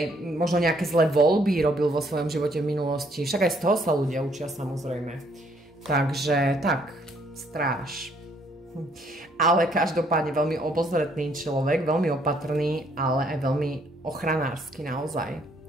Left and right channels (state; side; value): normal; both; correlation 0.67